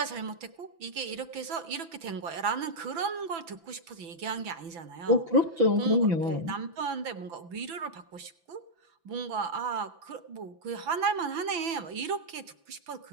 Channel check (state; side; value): late; left; 6.0 ms